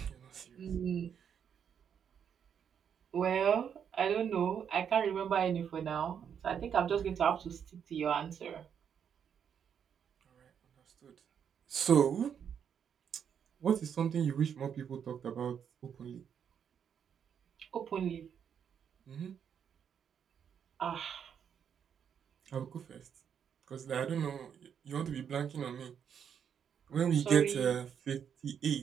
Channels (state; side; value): quieter; left; 8.0 dB